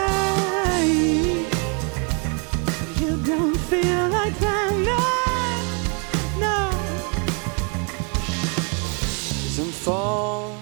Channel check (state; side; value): quieter; left; 35.8 dB